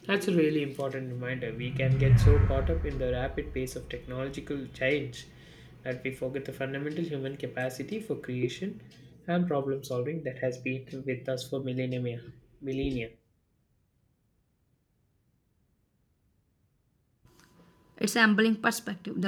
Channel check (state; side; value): identical; both; correlation 1.00